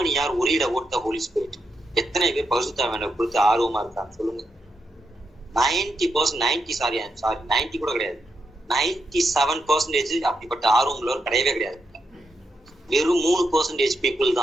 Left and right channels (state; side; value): normal; both; correlation 0.83